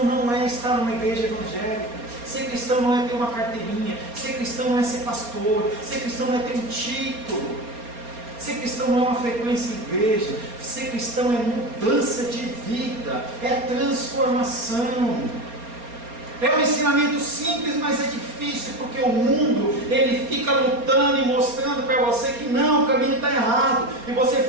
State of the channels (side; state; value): left; late; 4.3 ms